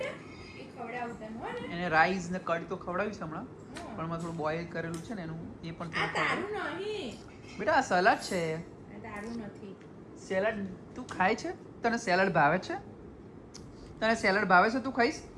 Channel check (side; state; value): both; identical; correlation 1.00